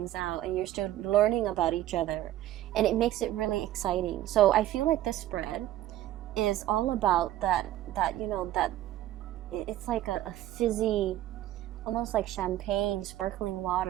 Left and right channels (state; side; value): quieter; left; 13.9 dB